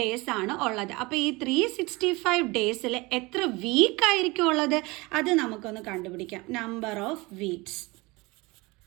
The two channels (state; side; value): quieter; left; 23.8 dB